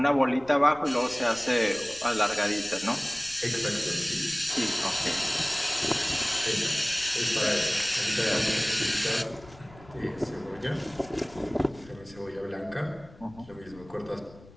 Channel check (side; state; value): left; noise; rumble, 22 dB below the sound